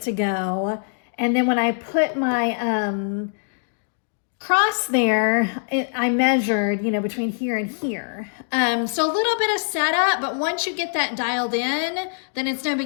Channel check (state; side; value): silent; right; digital silence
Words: to go. And then when I put my cross there, I measured, you know, between here and here. So a little bit of setup, but once you get that dialed in, then it's no